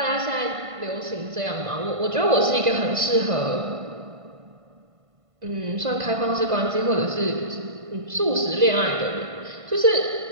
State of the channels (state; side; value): late; left; 1.5 ms